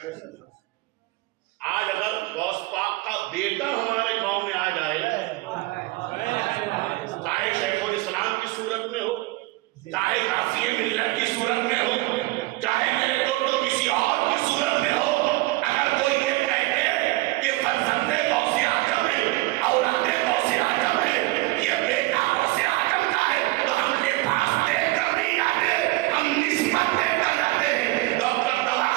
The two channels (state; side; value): quieter; left; 20.8 dB